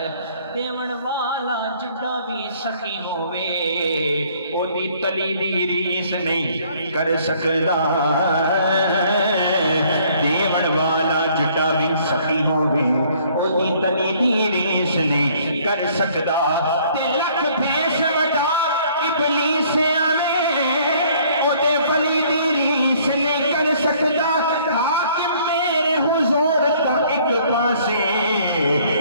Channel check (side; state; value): both; inverted; correlation -0.60